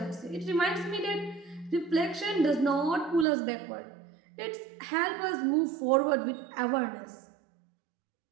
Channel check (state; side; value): drops out; left; at 3.2 s